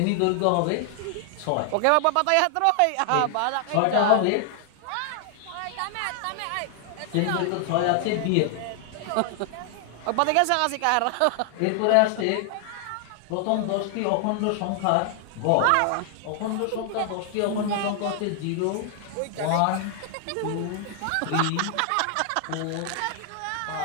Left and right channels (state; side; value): different; both; correlation 0.00